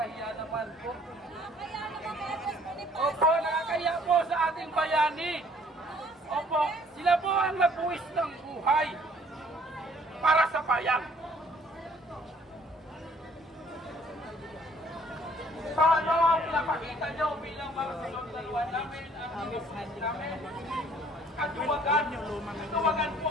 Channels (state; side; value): normal; both; correlation 0.59